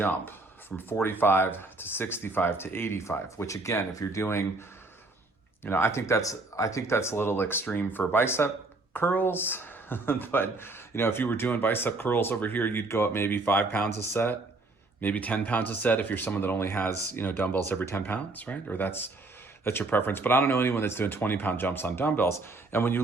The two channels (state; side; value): quieter; left; 3.2 dB